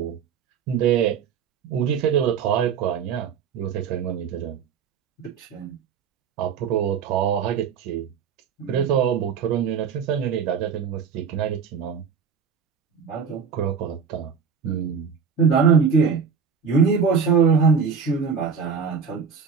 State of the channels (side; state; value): left; quieter; 6.5 dB